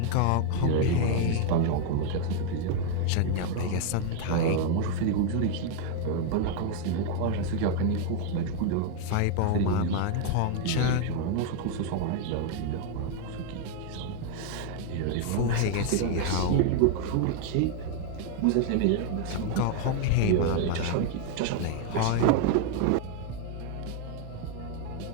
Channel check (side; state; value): both; different; correlation 0.00